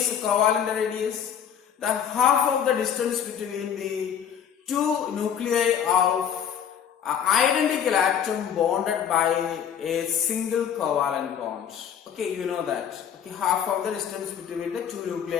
covalent radius? The half of the distance between the two nuclei of identical atom bonded by a single covalent bond. Okay, you know that. Okay, half of the distance between the two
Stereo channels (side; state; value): right; quieter; 8.5 dB